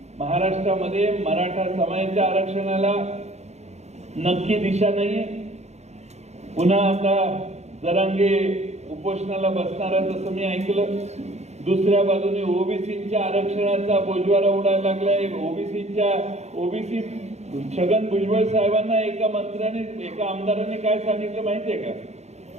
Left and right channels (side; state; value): left; late; 0.32 ms